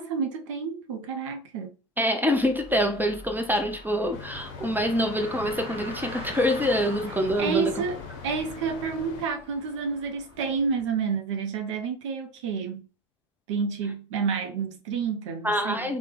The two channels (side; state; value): both; normal; correlation 0.36